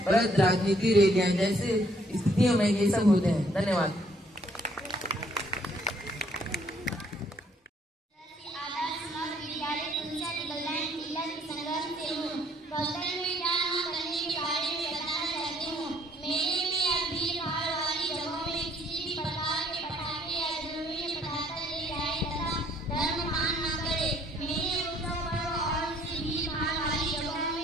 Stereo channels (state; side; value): normal; both; correlation 0.64